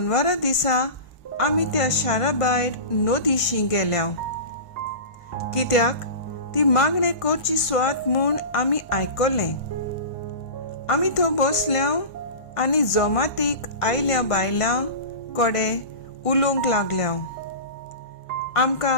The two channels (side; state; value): right; late; 1.5 ms